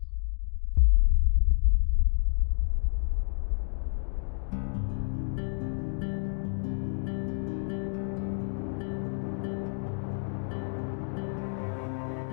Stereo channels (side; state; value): right; silent; digital silence